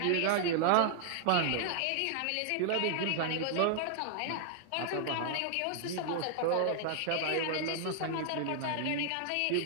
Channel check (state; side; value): different; both; correlation 0.00